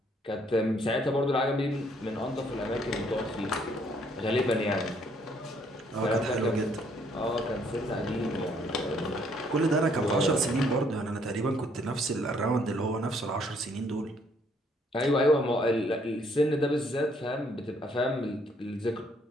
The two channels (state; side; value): normal; both; correlation 0.66